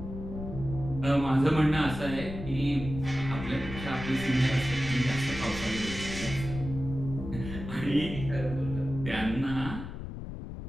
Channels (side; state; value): left; noise; rumble, 9 dB below the sound